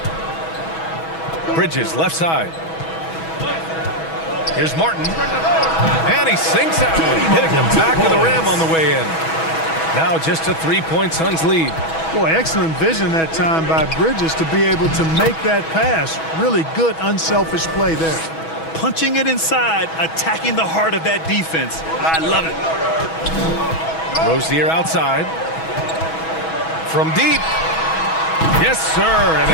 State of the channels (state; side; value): late; right; 6.2 ms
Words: Bridges left side. Here's Martin. And he sinks that one, hitting the back of the rim on the way in. Now just a 3-point Suns lead. Boy, excellent vision that time by Bridges to be able to make that pass. Really good, unselfish play there. Punching it inside, attacking the heart of that defense. I love it. Rozier outside. From deep. Yes, sir. And